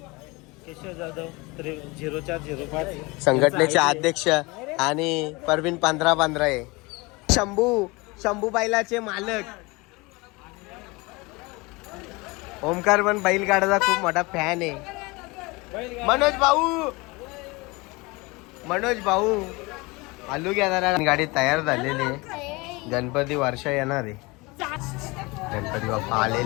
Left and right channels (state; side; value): quieter; right; 24.8 dB